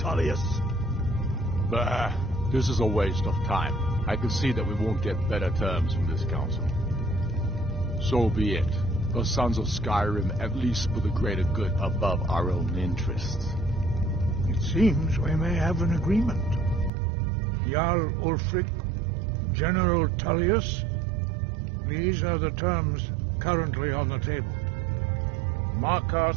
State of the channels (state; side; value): drops out; left; at 16.9 s